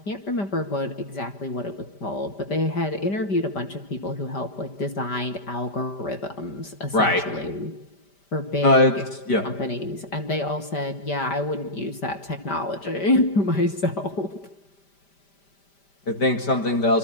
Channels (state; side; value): late; right; 5.1 ms